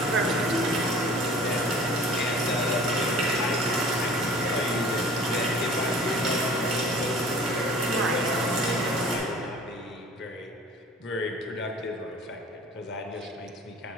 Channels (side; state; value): both; normal; correlation 0.46